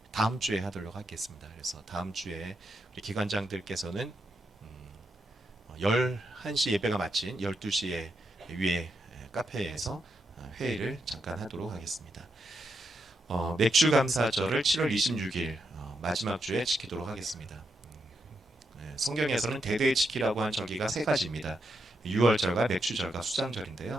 다음 주에 하도록 하겠습니다. 그래서 다음 주에 우리 기관장들께서는 11시 예배가 마친 12시에 위에 카페에서 회의를 잠깐 하도록 하겠습니다. 맥주 감사절을 7월 26일 마지막 주에 지키도록 하겠습니다. 성경에서는 대대의 지키라고 한 절기가 세 가지입니다. 유월절과 맥주절과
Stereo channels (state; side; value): normal; both; correlation 0.82